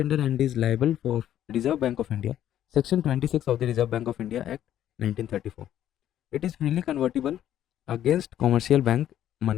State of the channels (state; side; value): quieter; right; 11.4 dB